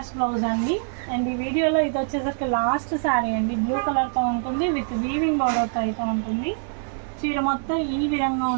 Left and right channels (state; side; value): silent; left; digital silence